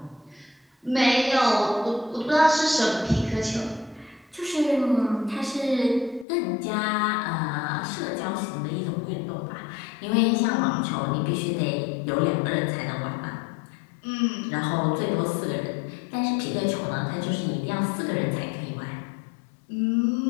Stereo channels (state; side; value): drops out; right; at 6.2 s